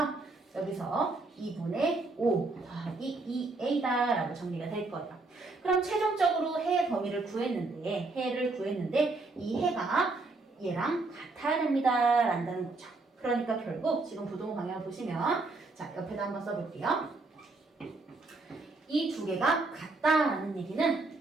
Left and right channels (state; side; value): quieter; left; 3.4 dB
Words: 여기서 2분의 5 더하기 2a다 라고 정리가 될 거예요. 그럼 최종적으로 해의 범위를 구했는데 해를 구했는데 이 해가 얘랑 같아야 됩니다 라는 거죠. 그러니까 결국 지금 부동호 방향을 보시면 자 옆에다 한번 써볼게요. 이 두 개가 같다라는 얘기는